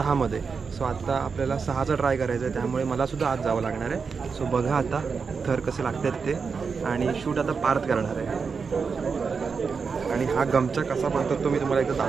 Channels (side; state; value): left; quieter; 5.4 dB